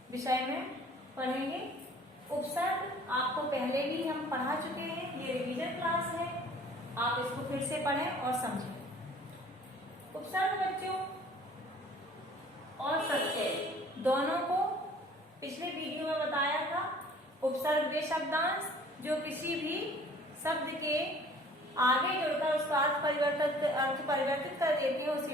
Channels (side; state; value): both; normal; correlation 0.51